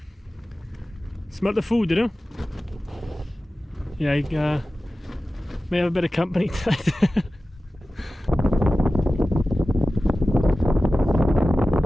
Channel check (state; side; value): normal; both; correlation 0.95